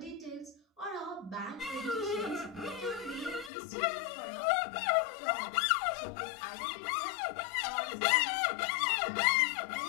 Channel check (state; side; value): drops out; right; at 3.5 s